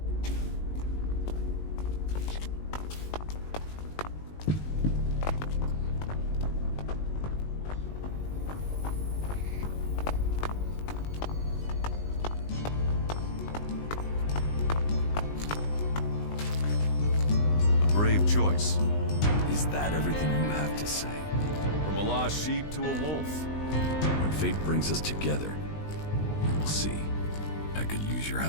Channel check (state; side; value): late; right; 20 ms